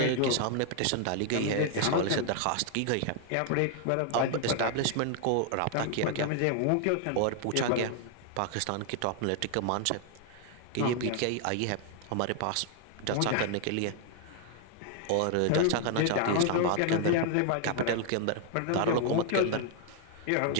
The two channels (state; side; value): different; both; correlation 0.00